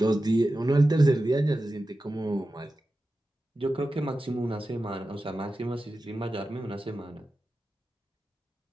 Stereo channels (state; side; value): normal; both; correlation 0.93